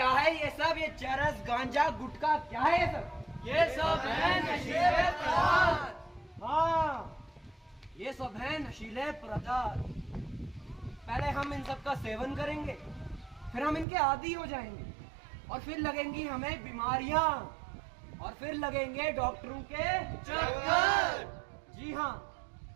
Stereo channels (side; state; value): left; drops out; at 13.9 s